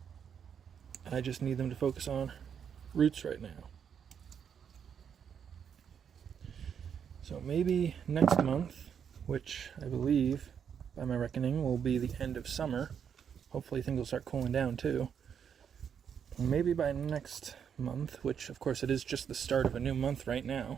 I just need them to focus on roots right now. So maybe next month, which I believe, by my reckoning, will be the end of summer. Hopefully things will start cooling down too. Maybe by next month, which of course it is just the start of a new month right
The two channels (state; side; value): quieter; left; 7.7 dB